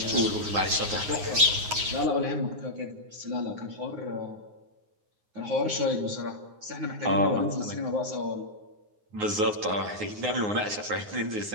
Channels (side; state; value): left; late; 9.6 ms